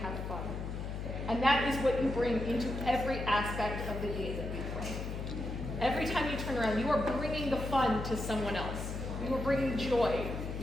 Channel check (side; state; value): left; noise; hum, 5 dB below the sound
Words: fun. And that is what you bring into every aspect of the game that we play. Every time you turn around, you are bringing the fun to someone else. You are bringing joy.